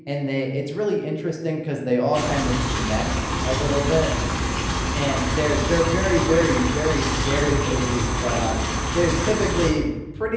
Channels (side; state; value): both; identical; correlation 1.00